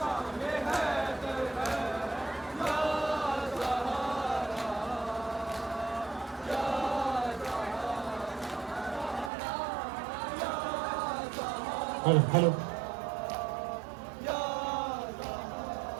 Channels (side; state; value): left; drops out; at 9.3 s